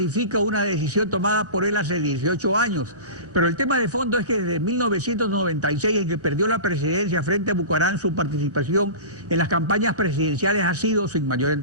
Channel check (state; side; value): late; left; 1.3 ms